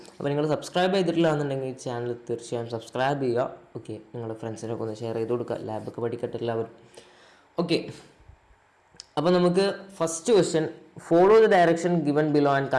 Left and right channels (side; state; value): both; identical; correlation 1.00